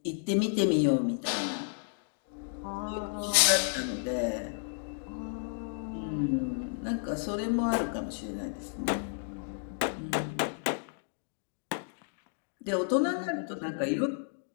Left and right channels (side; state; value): right; silent; digital silence